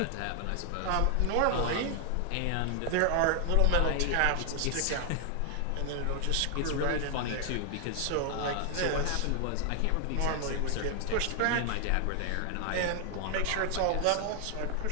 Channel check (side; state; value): both; different; correlation 0.00